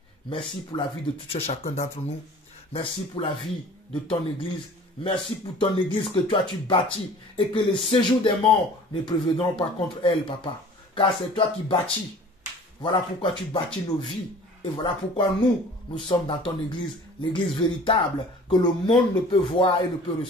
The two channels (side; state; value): both; normal; correlation 0.46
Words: merci pour la vie de tout un chacun d'entre nous. Merci pour la vie de ton Église. Merci pour ton Église que toi tu bâtis et que les séjours des morts ne prévaudront pas contre elle, Papa. Car c'est toi qui bâtis. Voilà pourquoi tu bâtis nos vies. Et voilà pourquoi nous sommes dans ton Église, l'Église véritable, que le monde ne peut voir et ne peut